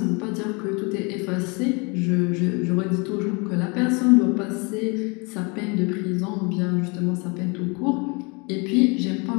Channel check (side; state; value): right; quieter; 30.4 dB